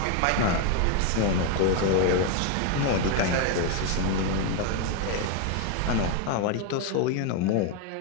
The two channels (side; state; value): both; different; correlation 0.01